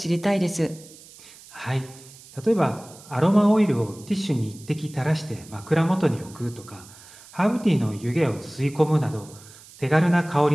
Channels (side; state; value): right; noise; hiss, 21 dB below the sound